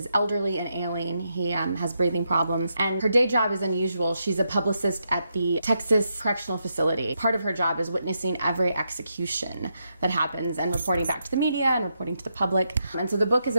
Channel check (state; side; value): inverted; both; correlation -0.82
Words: elderly and ailing. He has breathing problems, and her day job is unusual. She's a publicist at the Texas Correctional Facility. Part of her job is witnessing every execution that happens and reporting back to the media and reporting to the public. And so the book is